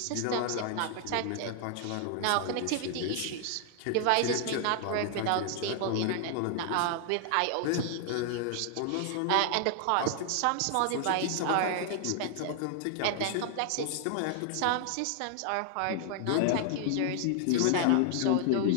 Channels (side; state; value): both; different; correlation 0.00